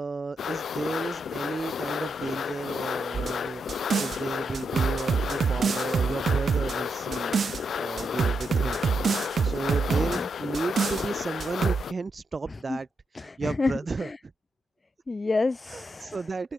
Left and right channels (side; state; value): both; normal; correlation 0.83